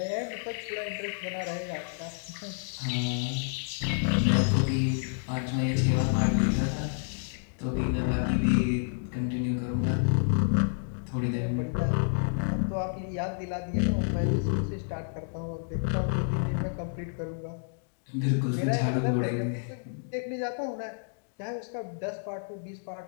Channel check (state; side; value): silent; right; digital silence